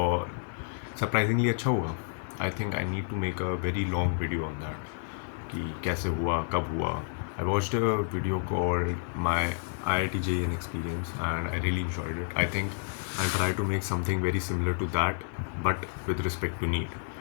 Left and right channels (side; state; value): right; silent; digital silence